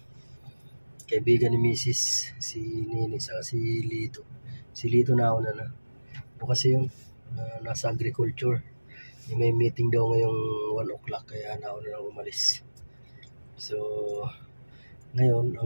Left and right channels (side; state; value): both; inverted; correlation -1.00